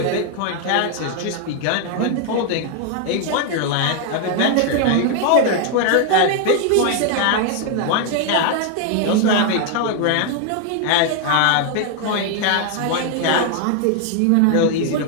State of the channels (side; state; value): both; different; correlation 0.00